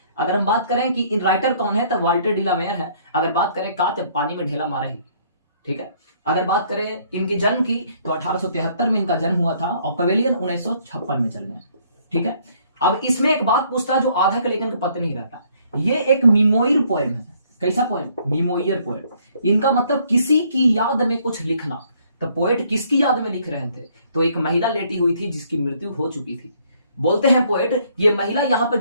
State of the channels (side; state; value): both; inverted; correlation -0.64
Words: अगर हम बात करें कि इन राइटर कौन है तो वाल्टर डिलामेयर है। अगर बात करें का जब पानी में ढेला मारे ही, ठीक है। अगर बात करें इनकी जन्म की तो 1873 में इनका जन्म हुआ था और पवेलियन 1956 में चल गए, ठीक है। अब इसमें एक बात पूछता है जो आधा के लेकिन पता नहीं रहता, ये एक मिमोइर पोएम है। कैसा पोएम? मिमोइर पोएम। इनका मतलब किसी की याद में कुछ लिखना। तो पोएट किसकी याद में लिख रहे थे? तो एक महिला लेटी हुई थी जिसकी मृत्यु हो चुकी थी। बोलते हैं पोएट, ये महिला यहाँ पर